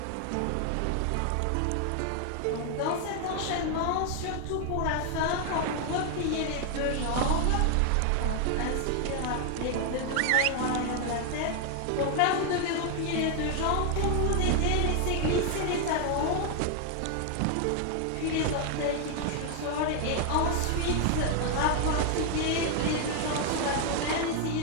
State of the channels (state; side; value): different; both; correlation 0.00